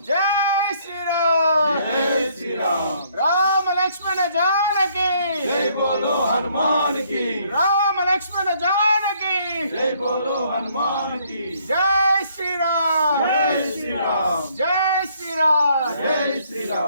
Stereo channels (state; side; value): inverted; both; correlation -0.66